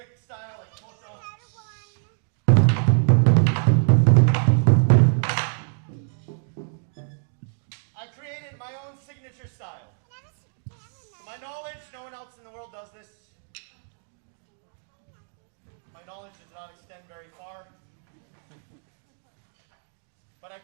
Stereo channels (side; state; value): left; silent; digital silence